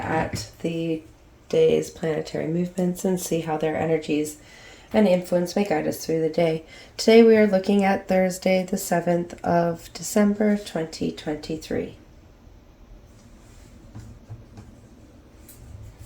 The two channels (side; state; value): both; identical; correlation 1.00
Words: the day's planetary movements and see how their energies and influence may guide us through the day. Today we are looking at Thursday, the 7th of December, 2023.